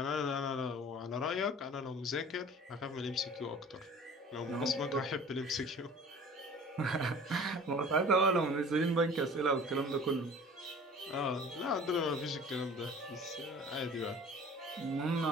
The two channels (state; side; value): normal; both; correlation 0.45